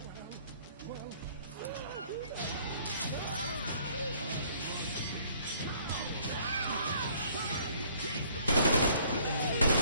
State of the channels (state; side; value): inverted; both; correlation -0.60